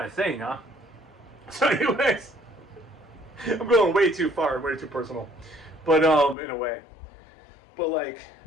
of thing, huh? So anyways, I'm going way too far, way too personal, but in a way. But like,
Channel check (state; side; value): drops out; right; at 6.4 s